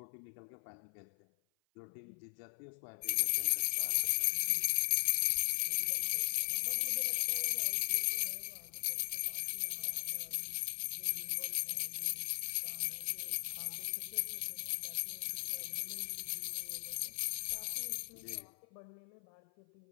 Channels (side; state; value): right; silent; 52 dB below the other